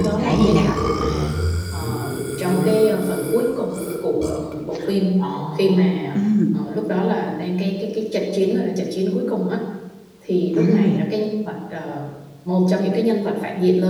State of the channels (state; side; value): identical; both; correlation 1.00